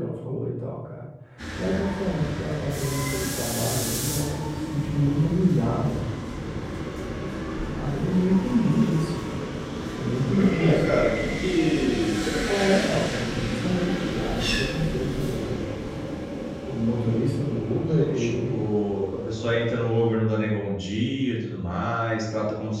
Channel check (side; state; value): both; identical; correlation 1.00